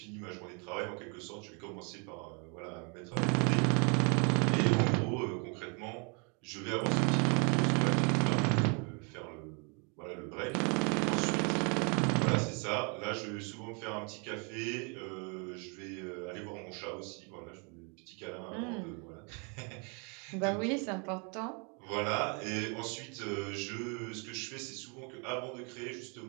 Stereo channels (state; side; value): quieter; left; 35.2 dB